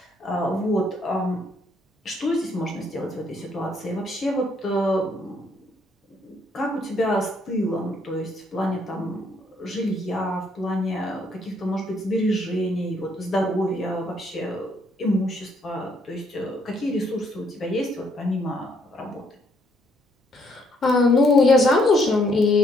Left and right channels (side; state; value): both; normal; correlation 0.69